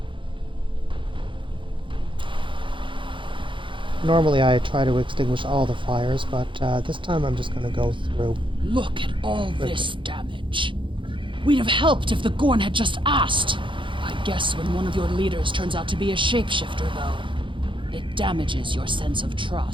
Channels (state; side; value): late; left; 0.24 ms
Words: Normally I try to extinguish all the fires, but this time I'm just going to go through. Look at all this damage. We'd have helped if the Gorn had just asked. I guess when one of your leaders turns out to be a shapeshifter, though, it damages your sense of